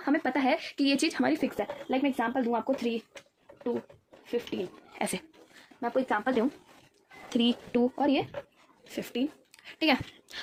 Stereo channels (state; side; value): identical; both; correlation 1.00